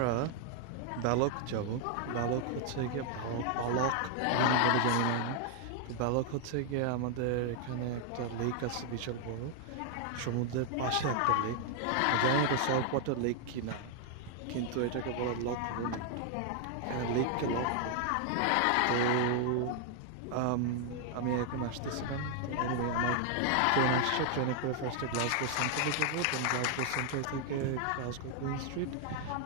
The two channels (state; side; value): different; both; correlation 0.00